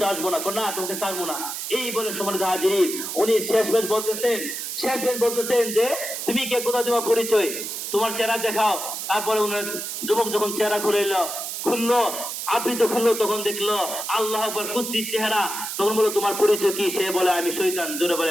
আসবো না, কোনা তোমাকে ছাড়বো না। এই বলে সম্মানিত হাজিরিন, উনি শেষ বেশ বলতেছেন যে তুমি কে, কোথা তোমার পরিচয়, তোমার চেহারা দেখাও। তারপরে উনার যুবক যখন চেহারা খুললো, আবৃত খুললো, তখন দেখলো আল্লাহ আকবার কুৎসিত চেহারা। তখন বললো, তোমার পরিচয় কি? সে বলে, আমি শয়তান। জোরে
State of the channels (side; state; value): right; noise; hiss, 5 dB below the sound